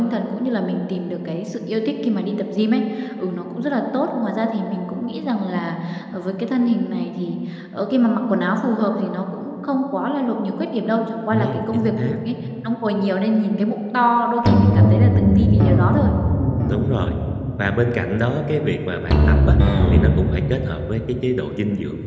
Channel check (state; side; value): identical; both; correlation 1.00